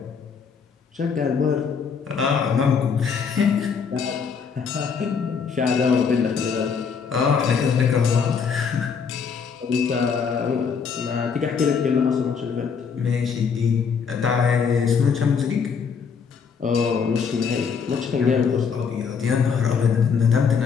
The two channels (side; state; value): right; quieter; 6.1 dB